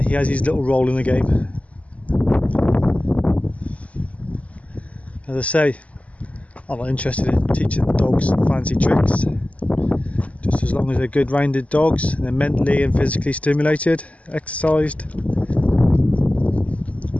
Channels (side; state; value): right; late; 0.067 ms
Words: he has his little role in the game. As I say, I'm not interested in teaching the dogs fancy tricks. Just as long as they're good rounded dogs and they're mentally and physically stimulated, exercised.